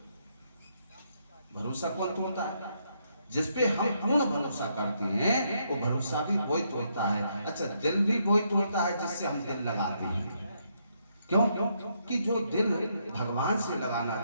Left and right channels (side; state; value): both; inverted; correlation -0.76